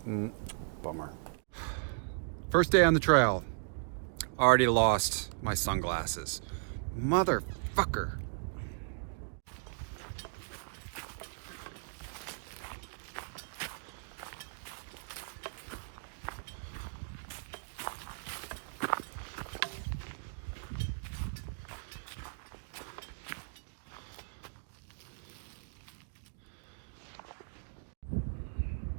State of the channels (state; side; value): silent; left; digital silence